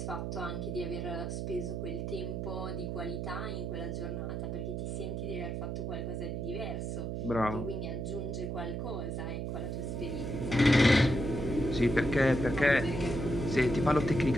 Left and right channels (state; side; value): noise; right; hum, 3 dB below the sound